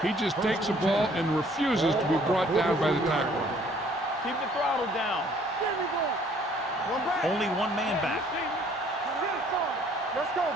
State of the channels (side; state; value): both; normal; correlation 0.59